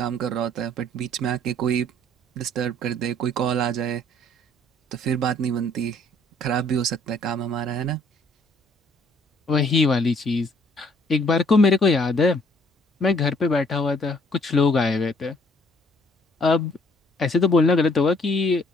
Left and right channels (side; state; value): both; normal; correlation 0.61